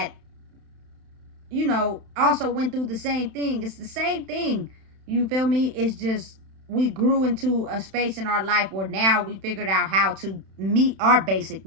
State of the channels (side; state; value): left; late; 31 ms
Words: you know, also went through the same thing. It's the same thing. You feel me? It's just we grew into a space in our life where now we figured out how to meet our basic